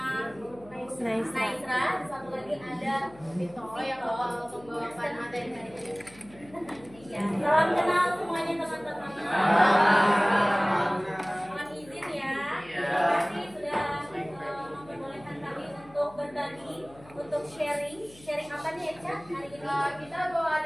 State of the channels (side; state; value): left; noise; hum, 23 dB below the sound